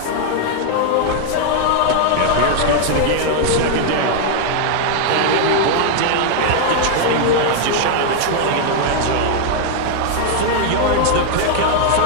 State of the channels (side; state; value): both; different; correlation 0.00